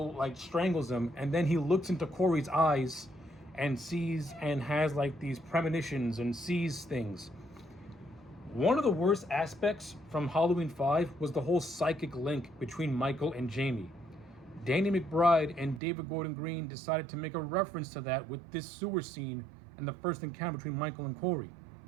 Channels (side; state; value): left; drops out; at 15.8 s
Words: strangles him, and then he looks into Corey's eyes and sees and has these premonitions and sees things. One of the worst aspects from Halloween 5 was the whole psychic link between Michael and Jamie. Danny McBride and David Gordon Green decided to make a reference to that with this sewer scene and the first encounter between Michael and Corey.